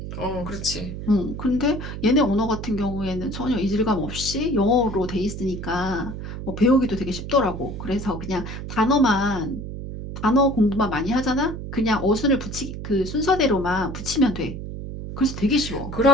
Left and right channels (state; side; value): noise; right; hum, 8 dB below the sound